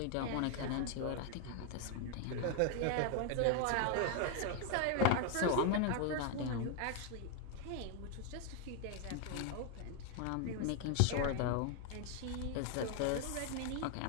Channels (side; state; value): both; different; correlation 0.00